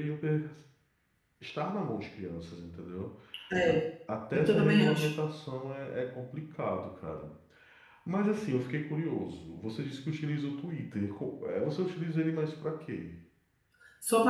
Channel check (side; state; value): both; identical; correlation 1.00